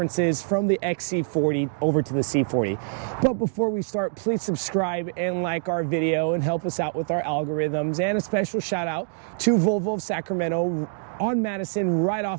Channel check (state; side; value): silent; left; digital silence